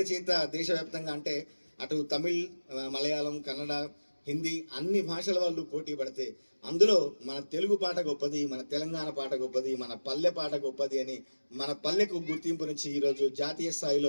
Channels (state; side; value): inverted; both; correlation -1.00